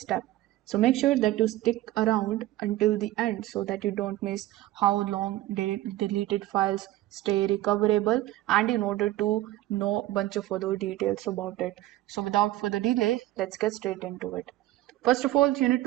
So make sure that you stick around until the end so that you don't miss how long deleted files stay recoverable and in order to know a bunch of other details about it. So without further delay, let's get straight into it. First of all, you need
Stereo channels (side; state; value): left; quieter; 15.7 dB